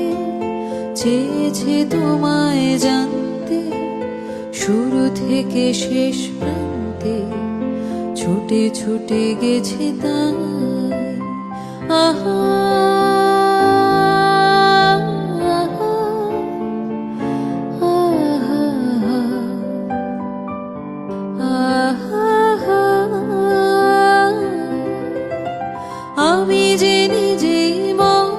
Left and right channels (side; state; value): both; identical; correlation 1.00